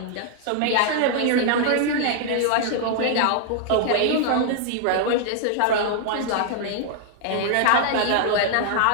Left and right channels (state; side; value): different; both; correlation -0.01